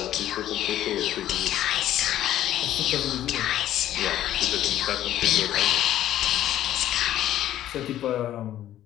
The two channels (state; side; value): quieter; right; 12.5 dB